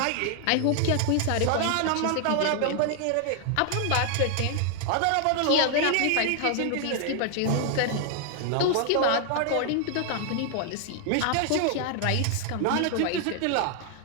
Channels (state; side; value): different; both; correlation 0.00